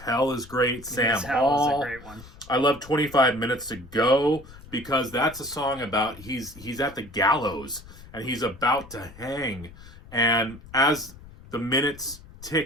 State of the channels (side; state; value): left; noise; rumble, 19 dB below the sound